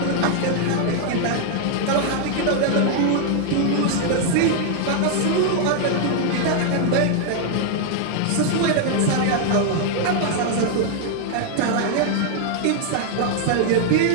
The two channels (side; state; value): both; different; correlation 0.00